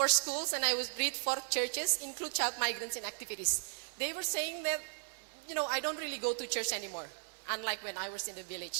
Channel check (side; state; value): left; silent; digital silence